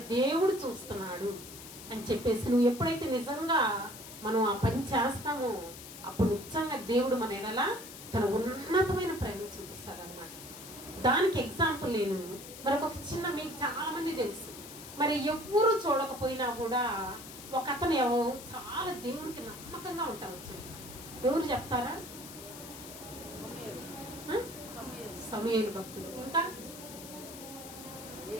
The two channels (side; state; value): left; noise; hiss, 14 dB below the sound